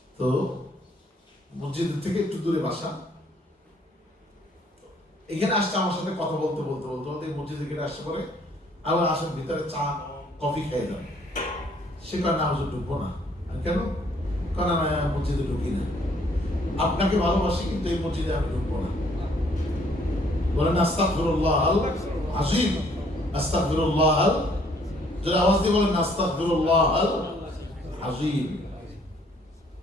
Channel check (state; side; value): normal; both; correlation 0.63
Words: তো মসজিদ থেকে একটু দূরে বাসা, এখানে আসছে আমার সাথে কথা বলতে বলতে বলতে বলতে মসজিদে গেটে আসছে, পরে আবার আসার ভিতরে চা কফি খেয়ে যান। সে কারণে না হুজুর ঢুকবো না। কেন? কারণ আমি মসজিদে ঢুকি না, আপনাকে ভালোবাসি কিন্তু এই মসজিদে আমি ঢুকবো না। বলেন আস্তাগফিরুল্লাহ আল আযীম, আস্তাগফিরুল্লাহ আল, যারা আওয়াজ দিয়ে বলেন আস্তাগফিরুল্লাহ আল আযীম।